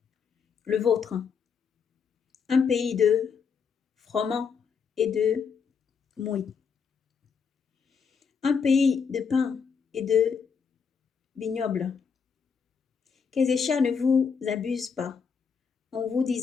le vôtre, un pays de froment et de mouille, un pays de pain et de vignoble. Qu'Ézéchias ne vous abuse pas en vous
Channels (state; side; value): quieter; right; 6.2 dB